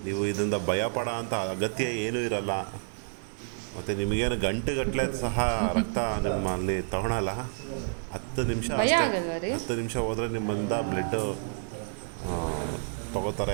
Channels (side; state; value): left; silent; 58 dB below the other